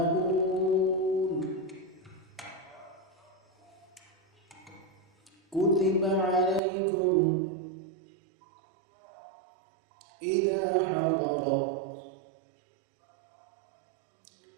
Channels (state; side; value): drops out; left; at 6.6 s